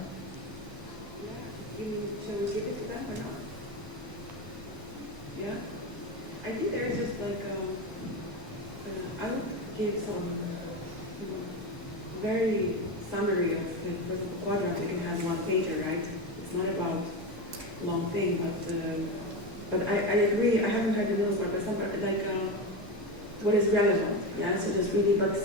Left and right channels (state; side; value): normal; both; correlation 0.18